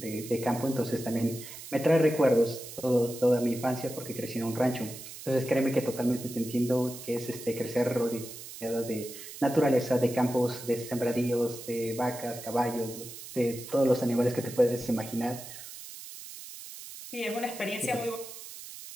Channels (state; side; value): noise; right; hiss, 13 dB below the sound